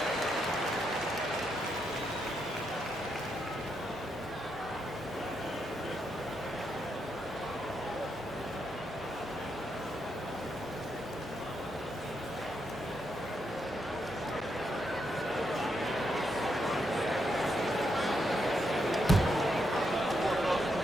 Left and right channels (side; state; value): both; normal; correlation 0.81